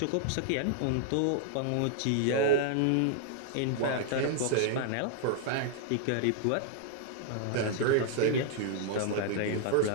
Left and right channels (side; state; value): both; different; correlation -0.01